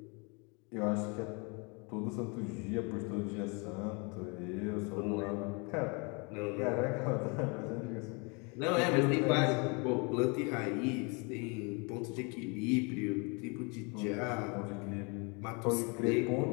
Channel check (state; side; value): quieter; right; 31.7 dB